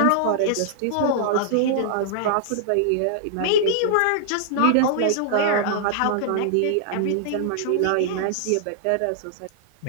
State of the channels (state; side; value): different; both; correlation -0.01